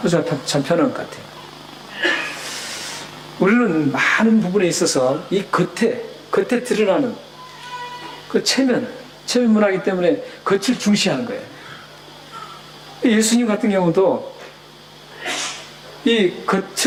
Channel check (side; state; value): both; identical; correlation 1.00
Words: 호주가 참 편한 것 같아요. 우리는 많은 부분에 있어서 이 겉에 드러나는 그 체면 문화이기 때문에 겉을 중시하는 거예요. 예수님 같은 경우도 이